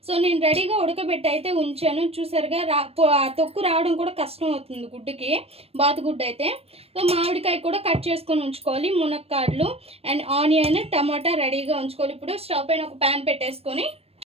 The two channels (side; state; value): left; late; 0.29 ms